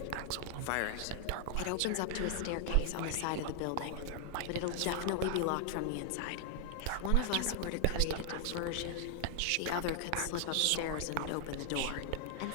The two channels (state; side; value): different; both; correlation 0.00